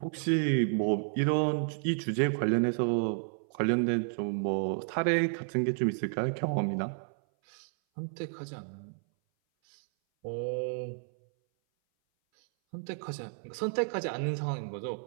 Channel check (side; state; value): left; silent; 57 dB below the other